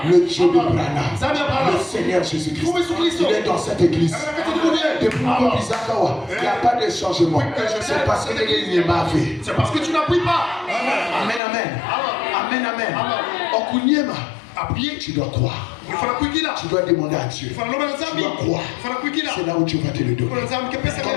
Le Dieu de Branham. Le Seigneur Jésus-Christ. Il est dans cette église. Depuis il n'y a pas de changement. C'est parce que c'est parce que tu n'appuies pas. Amen. Appuyer, tu dois croire. Tu dois demander à Dieu. Tu dois croire. C'est là où tu vas te le donner. Quand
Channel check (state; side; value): drops out; right; at 11.4 s